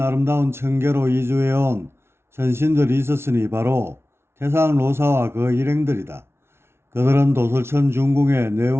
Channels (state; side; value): late; left; 0.12 ms